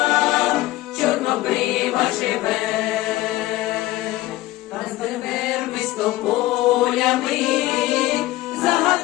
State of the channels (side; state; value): right; quieter; 17.3 dB